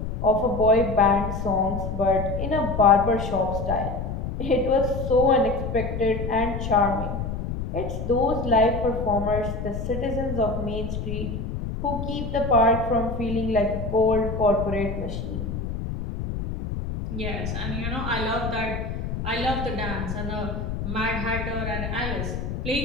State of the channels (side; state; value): left; noise; rumble, 4 dB below the sound